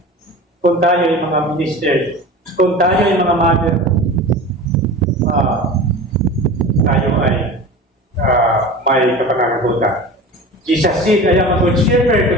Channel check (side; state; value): both; normal; correlation 0.34